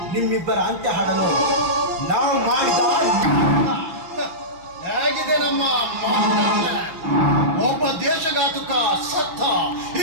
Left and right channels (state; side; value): late; left; 6.1 ms